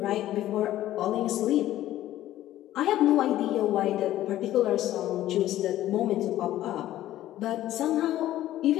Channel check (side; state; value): right; quieter; 13.8 dB